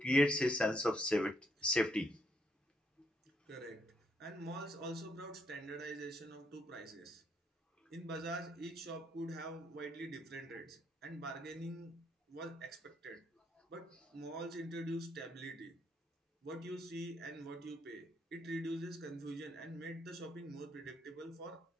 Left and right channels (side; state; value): both; normal; correlation 0.73